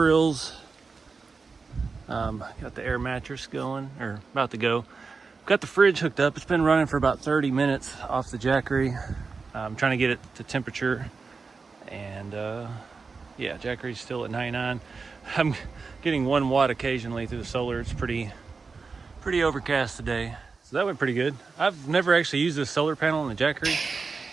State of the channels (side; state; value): left; quieter; 4.6 dB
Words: Got the air mattress going, or about to go. Got the fridge hooked up. It's been running for about 30 minutes off the Jackery. I'm trying to get it to temperature, and yeah, Jackery's still at 99. I'm getting 1 watt occasionally through the solar. It's pretty overcast today, so that went pretty good. I've never actually used this solar panel on the Jackery.